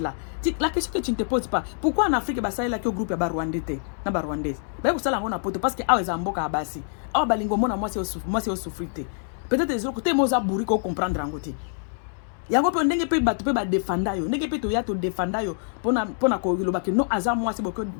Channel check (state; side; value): silent; right; digital silence